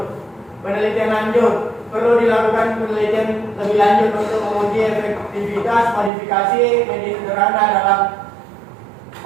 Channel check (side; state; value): left; drops out; at 6.1 s